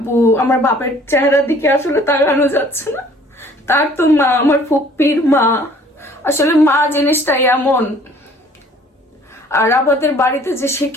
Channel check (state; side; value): normal; both; correlation 0.55